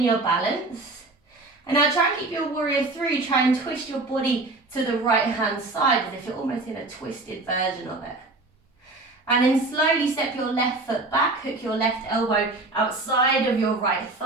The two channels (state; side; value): quieter; left; 3.1 dB